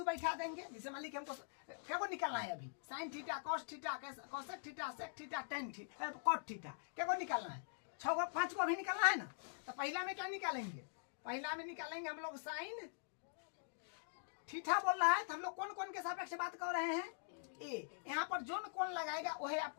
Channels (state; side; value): silent; right; digital silence